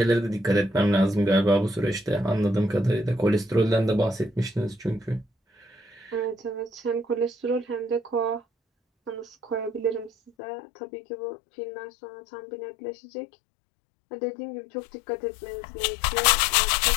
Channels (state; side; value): drops out; right; at 10.3 s